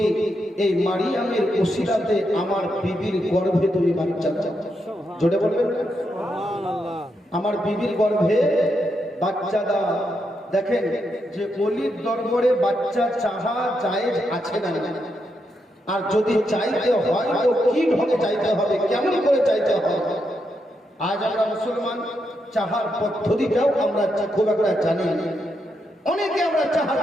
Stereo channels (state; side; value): normal; both; correlation 0.82